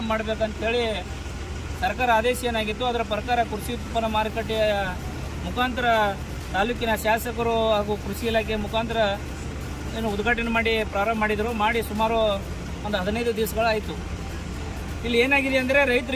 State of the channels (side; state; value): both; identical; correlation 1.00